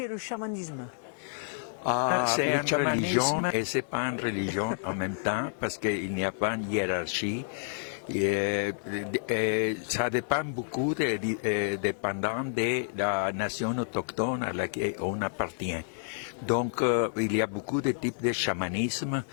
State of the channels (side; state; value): right; silent; digital silence